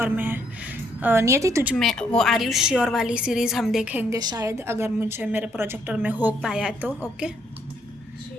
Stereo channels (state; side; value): normal; both; correlation 0.70